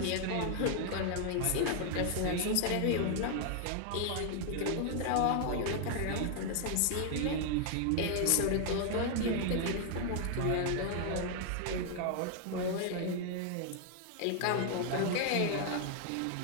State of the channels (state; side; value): different; both; correlation 0.00